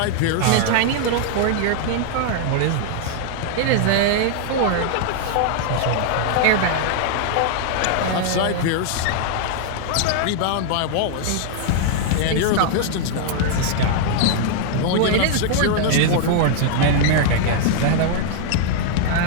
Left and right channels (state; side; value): different; both; correlation 0.00